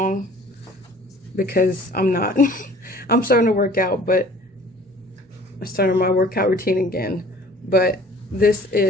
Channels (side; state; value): both; normal; correlation 0.50